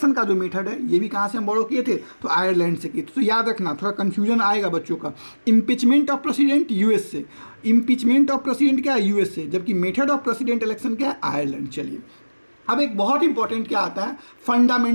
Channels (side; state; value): both; inverted; correlation -1.00